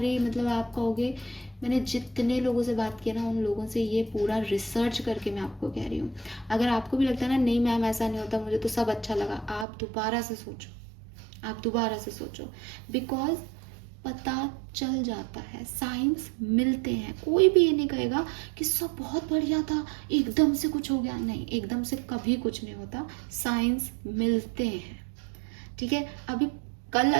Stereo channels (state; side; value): drops out; left; at 9.7 s